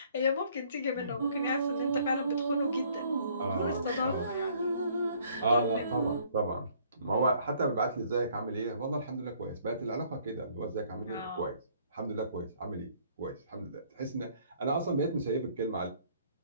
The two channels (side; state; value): both; inverted; correlation -0.61